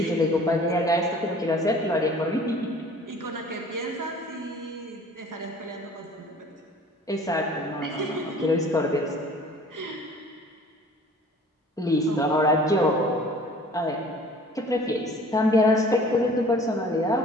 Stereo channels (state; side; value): normal; both; correlation 0.49